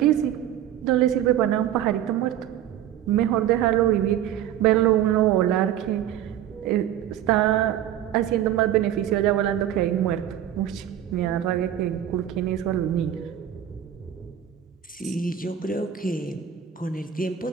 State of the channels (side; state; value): left; quieter; 10.8 dB